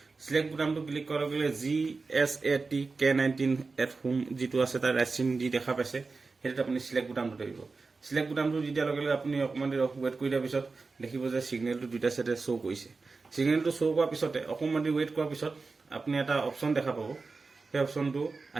সিলেক্ট বুটামটো ক্লিক কৰাৰ লগে লগে GSAT-K19 যিটো আছে তাৰ ৰাইট চিন দি দেখা পাইছে, সেইটোত আপুনি সিলেক্ট বুটামটো দিব। সিলেক্ট বুটামটো দি দিয়াৰ লগে লগে আপুনি অকণমান দেৰি ৱেইট কৰি দিয়াৰ পিছত দেখিব যে ছিগনেলটো দুটা চাইডে শ্ব' কৰিছে। ছিগনেলটো শ্ব' কৰাৰ পিছতে অকণমান দেৰি ৱেইট কৰাৰ পিছত আপুনি এটা অপশ্যন দেখা পাব। সেই অপশ্যনটো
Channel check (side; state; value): left; quieter; 4.1 dB